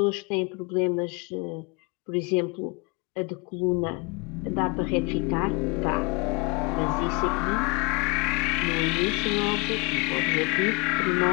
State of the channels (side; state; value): right; quieter; 29.5 dB